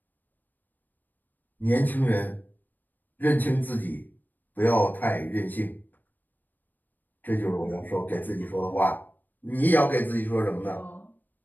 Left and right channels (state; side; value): late; right; 0.088 ms